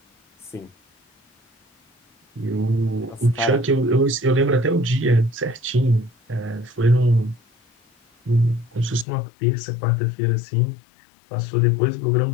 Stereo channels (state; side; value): drops out; right; at 9.1 s